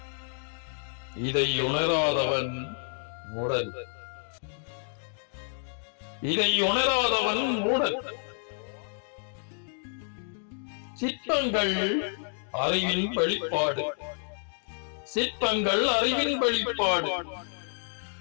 இதை உணராதவன் மூடன், இதை உணராதவன் மூடன். சிற்பங்கள் அறிவின் வெளிப்பாடு, சிற்பங்கள் அறிவின் வெளிப்பாடு.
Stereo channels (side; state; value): right; silent; 58 dB below the other